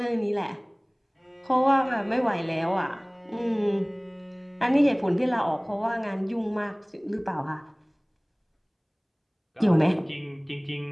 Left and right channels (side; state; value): both; identical; correlation 1.00